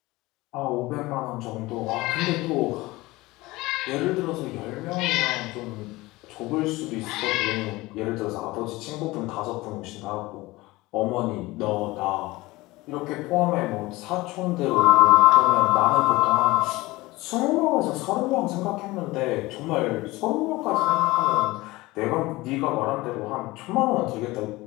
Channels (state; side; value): quieter; right; 20.4 dB